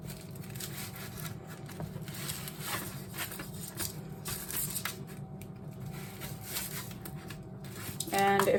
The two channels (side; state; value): both; identical; correlation 1.00